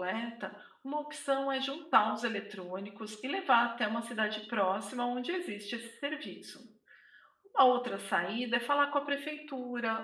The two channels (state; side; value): identical; both; correlation 1.00